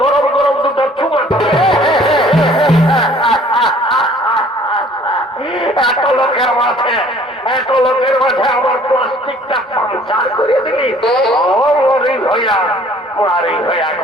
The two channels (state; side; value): normal; both; correlation 0.55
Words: গরম গরম দুটো চুমা দেবে। এত লোকের মাঝে আমার প্লাস্টিকটা পাঞ্চার করে দিলি। মারি হইয়া